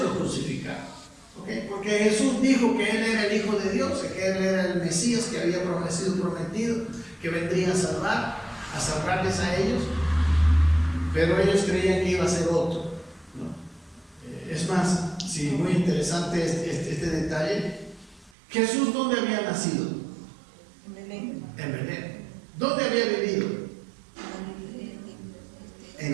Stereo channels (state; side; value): drops out; left; at 18.4 s